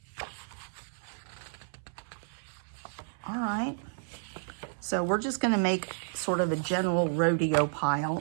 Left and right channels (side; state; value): left; silent; 57 dB below the other